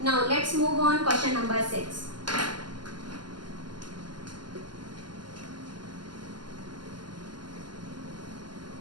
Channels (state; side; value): late; left; 0.71 ms